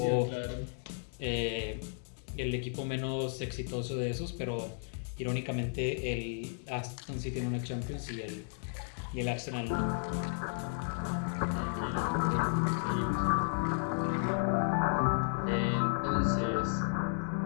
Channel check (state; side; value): silent; right; digital silence